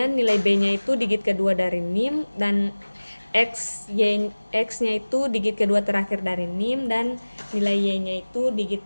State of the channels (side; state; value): both; inverted; correlation -1.00